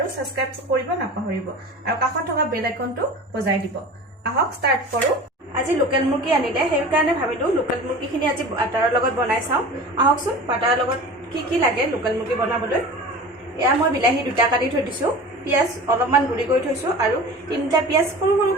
সাবস্ক্ৰাইব কৰিব নাপাহৰিব আৰু কাষত থকা বেল আইকনটো বজাই দিব। আহক ষ্টাৰ্ট কৰো। আজি লোকেল মুৰ্গী আনিলে সেই কাৰণে ভাবিলো লোকেল মুৰ্গীখিনি আজি বাটাৰৰ লগত বনাই চাওঁ। আহকচোন বাটাৰৰ লগত কি লাগে লোকেল মুৰ্গী বনাবলৈ। এয়া মই বিলাহী দুটা কাটি থৈ দিছো, পিয়াজ অলপমান গুৰি কৰি থৈছো আৰু তিনিটা পিয়াজ সৰু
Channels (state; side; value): normal; both; correlation 0.36